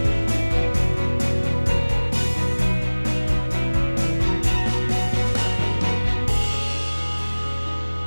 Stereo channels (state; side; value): inverted; both; correlation -1.00